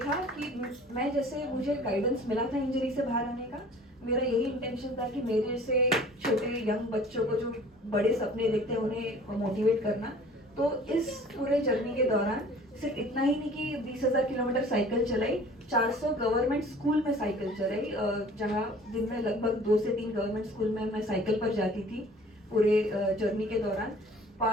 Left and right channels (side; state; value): both; normal; correlation 0.48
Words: कि मैं जैसे मुझे गाइडेंस मिला था इंजरी से बाहर आने का, मेरा यही इंटेंशन था कि मेरे जैसे छोटे यंग बच्चों को जो बड़े सपने देखते हैं उन्हें मोटिवेट करना। तो इस पूरे जर्नी के दौरान सिर्फ इतना ही नहीं कि 20,000 किलोमीटर साइकिल चलाई, 400 गवर्नमेंट स्कूल में साइकिल चलाई, जहाँ दिन में लगभग 2 से 3 गवर्नमेंट स्कूल में मैं साइकिल पर जाती थी पूरे जर्नी के दौरान।